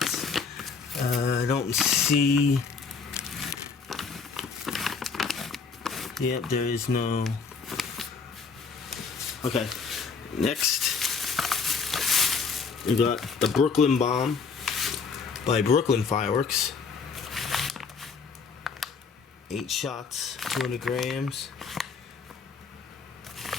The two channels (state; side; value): quieter; right; 5.1 dB